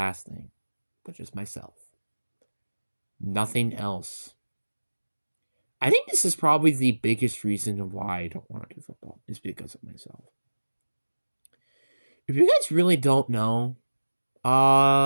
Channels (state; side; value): inverted; both; correlation -1.00